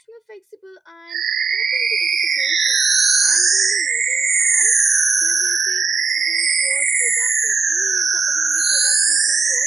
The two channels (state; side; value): quieter; left; 4.4 dB